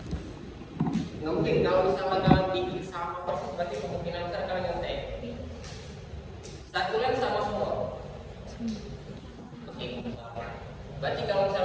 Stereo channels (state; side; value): identical; both; correlation 1.00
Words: Oke. Berarti kalau